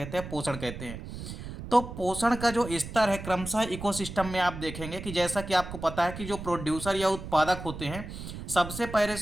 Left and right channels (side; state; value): right; noise; rumble, 10 dB below the sound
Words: हैं, पोषण कहते हैं। तो पोषण का जो स्तर है क्रमशः इकोसिस्टम में आप देखेंगे कि जैसा कि आपको पता है कि जो प्रोड्यूसर या उत्पादक होते हैं, सबसे पहले